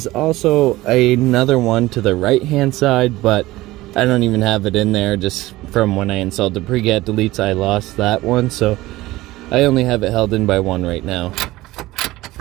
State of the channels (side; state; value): left; quieter; 18.1 dB